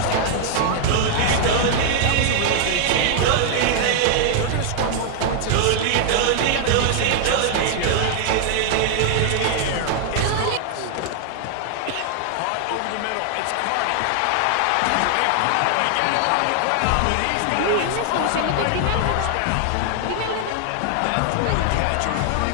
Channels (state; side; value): different; both; correlation 0.00